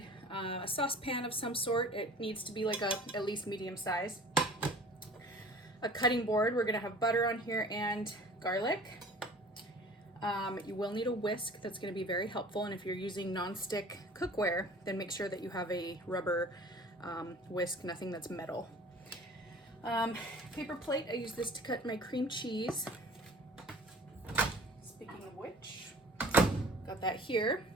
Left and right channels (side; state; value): both; normal; correlation 0.46